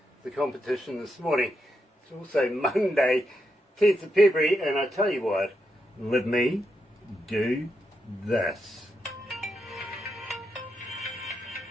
the competition this morning. It's also Monday, 10th of February, and I tell you what, let me do this.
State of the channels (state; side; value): normal; both; correlation 0.83